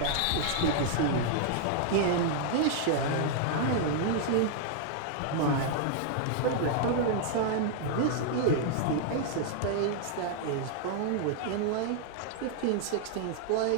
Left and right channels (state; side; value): different; both; correlation -0.01